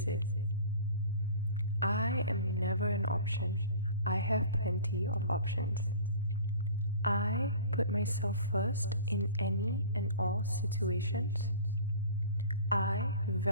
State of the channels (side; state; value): both; inverted; correlation -0.42